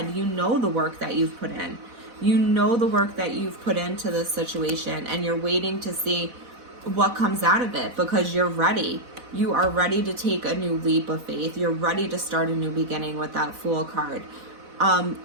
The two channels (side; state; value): left; late; 4.1 ms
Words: You know the work that you've put in. You know the work that you've put into this situation, and you're waiting to see what comes out of it because you're ready. You are ready to take a new leap of faith. You're ready to start a new beginning with that Fool card.